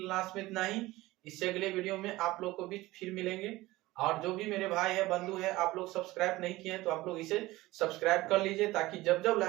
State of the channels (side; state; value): left; quieter; 18.7 dB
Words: में इतना ही, इससे अगले वीडियो में आप लोग को बीच फिर मिलेंगे। और जो भी मेरे भाई है, बंधु है, आप लोग सब्सक्राइब नहीं किए हैं तो आप लोग इसे सब्सक्राइब कर लीजिए, ताकि जब जब